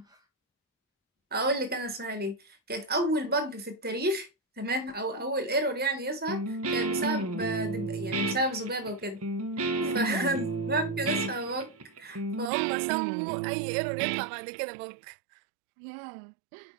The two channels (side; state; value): left; drops out; at 12.5 s